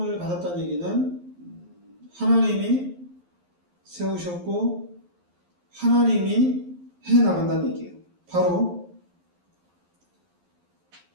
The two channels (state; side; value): late; left; 11 ms